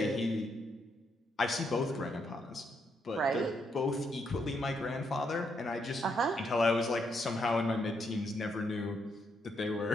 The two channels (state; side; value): normal; both; correlation 0.77